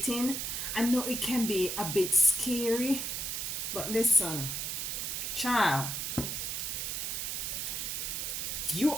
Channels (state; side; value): noise; right; hiss, 2 dB below the sound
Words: I know it can be a bit scary, but listen, child, you